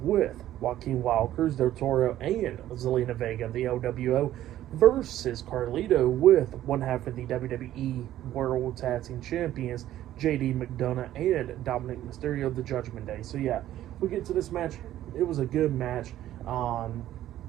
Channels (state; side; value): quieter; left; 13.1 dB